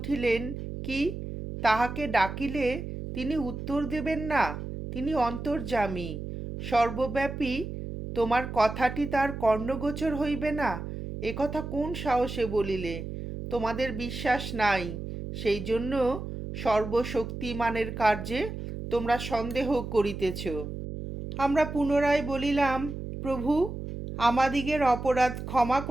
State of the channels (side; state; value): right; noise; hum, 7 dB below the sound